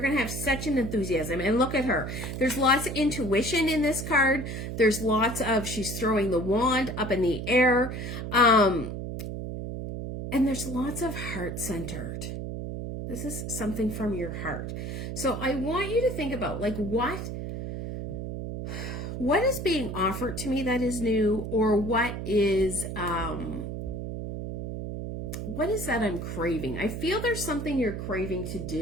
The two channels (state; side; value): noise; right; hum, 5 dB below the sound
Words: going to have such an enthusiasm. And look at her. There's lots of intuition in this card. There's lots of, she's throwing the wand up in the air. And there's lots of heart-centered. This is something from your heart. So I want you to think about, like, what is being offered to me that is new, or what is what is that I'm craving? I feel there's something you're craving to